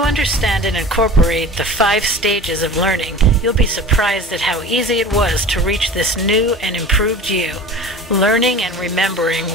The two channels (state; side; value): normal; both; correlation 0.38